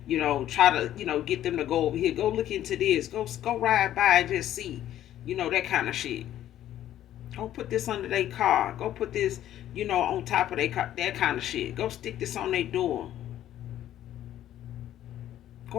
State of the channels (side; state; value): right; quieter; 12.1 dB